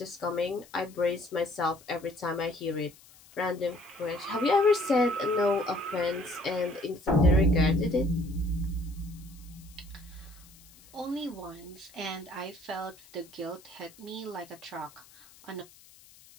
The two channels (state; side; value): noise; left; hiss, 24 dB below the sound